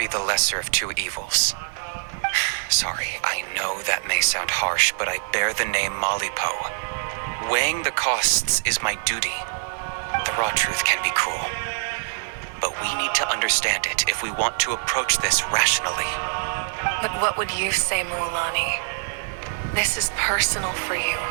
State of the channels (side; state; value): left; silent; digital silence